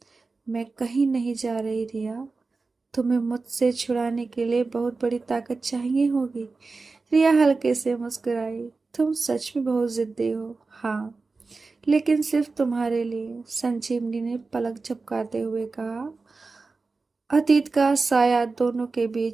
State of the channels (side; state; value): left; quieter; 4.0 dB